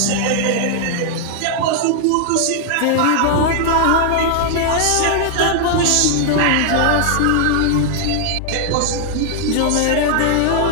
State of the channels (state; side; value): different; both; correlation -0.01